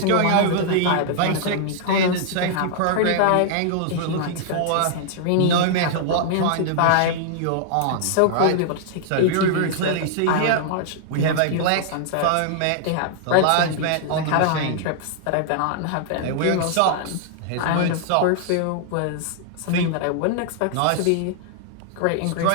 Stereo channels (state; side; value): different; both; correlation -0.01